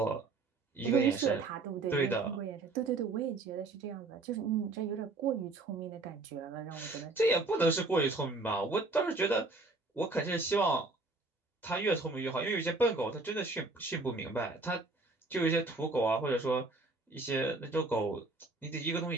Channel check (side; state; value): left; quieter; 3.3 dB